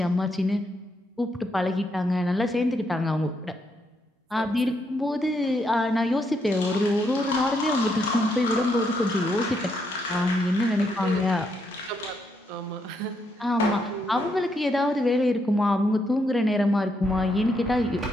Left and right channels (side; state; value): both; normal; correlation 0.77